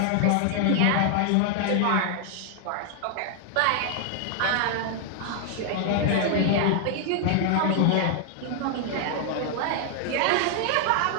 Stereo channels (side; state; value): both; different; correlation 0.00